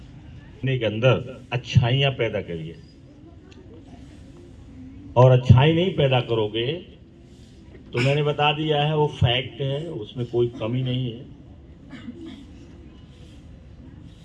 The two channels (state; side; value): identical; both; correlation 1.00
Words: के अंदर अच्छाइयां पैदा करिए, और अच्छाई नहीं पैदा करोगे तो मैंने बता दिया है, वो फैक्ट है, उसमें कोई कमी नहीं है।